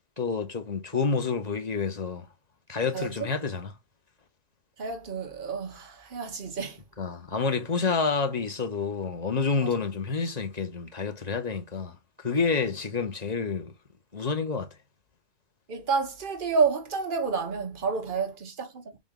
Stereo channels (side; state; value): left; late; 2.4 ms